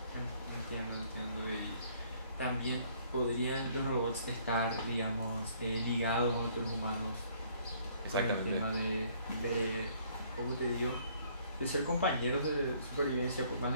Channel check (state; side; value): inverted; both; correlation -0.61